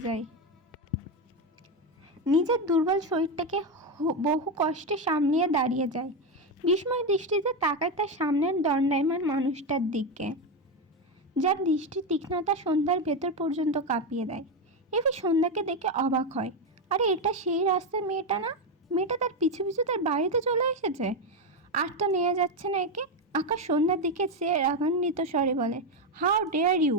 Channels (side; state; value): both; normal; correlation 0.10